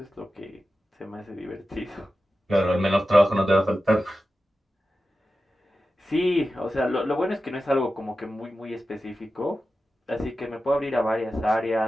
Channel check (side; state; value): both; normal; correlation 0.93